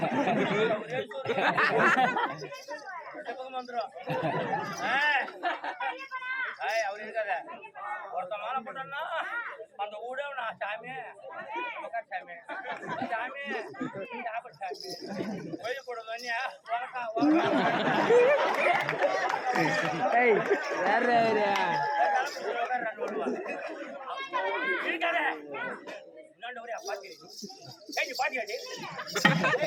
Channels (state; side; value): identical; both; correlation 1.00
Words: பக்கம் வந்துடும் அவர் இருக்காத ஒருத்த மாலை போட்டோம்னா அந்த ஊட நான் சாமி சாமி சாமி சாப்பிடு சாமி கோயில் போடுங்க இருக்காத இன்னொன்று ஒரே பாத்தி பாத்தியாடி